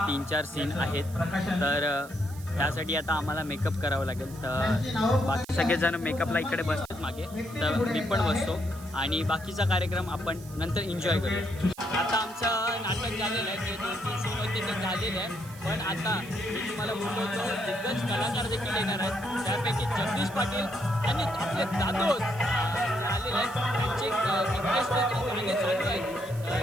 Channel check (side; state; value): right; noise; hiss, 19 dB below the sound